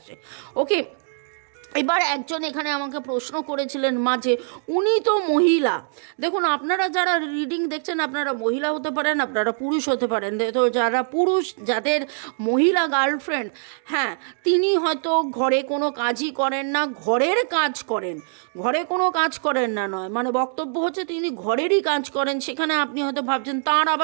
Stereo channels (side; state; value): left; silent; digital silence